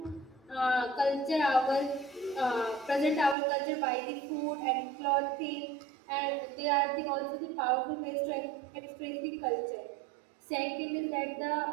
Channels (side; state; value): left; drops out; at 3.4 s